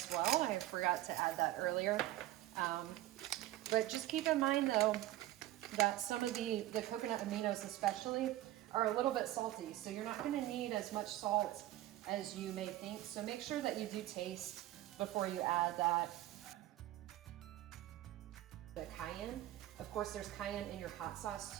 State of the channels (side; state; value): left; quieter; 15.2 dB